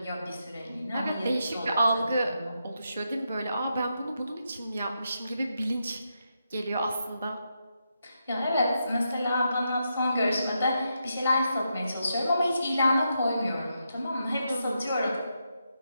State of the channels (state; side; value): inverted; both; correlation -0.83